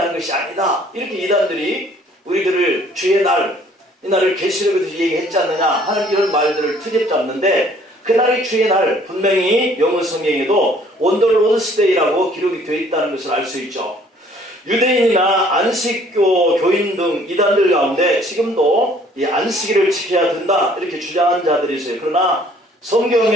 것이 아니다, 이렇게 이단들이 우리들을 주의 날, 이 날을 계시록에서 얘기했지 않느냐 하는 이런 말들을 트집잡는데, 그날이 주의 날, 분명히 영어 성경에도 On the Lord's Day라고 기록이 되어 있다는 것을 알 수 있죠. 유대인이나 안식교 교인 등 이단들 가운데 지금도 이 안식일을 지켜야 된다 이렇게 주장하는 자들이 있어요. 그러나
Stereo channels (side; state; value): both; normal; correlation 0.58